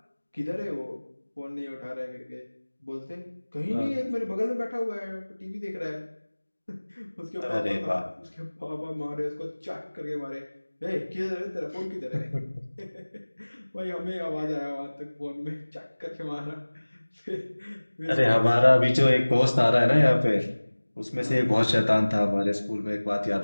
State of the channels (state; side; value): inverted; both; correlation -1.00